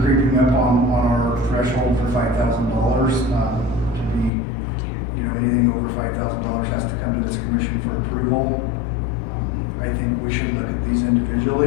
up on our threshold for $5,000, to be, you know, anything over $5,000 has to come to this commission for approval. I think we should look at these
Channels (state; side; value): drops out; right; at 4.3 s